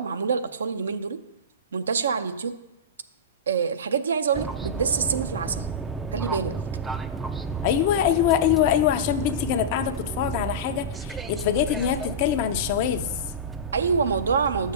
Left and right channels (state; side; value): normal; both; correlation -0.19